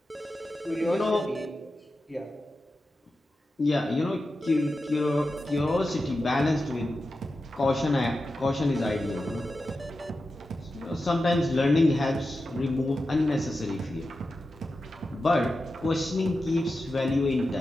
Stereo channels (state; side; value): normal; both; correlation 0.91